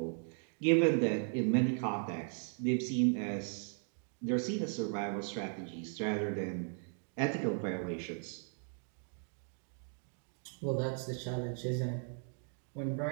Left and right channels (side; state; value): left; silent; 53 dB below the other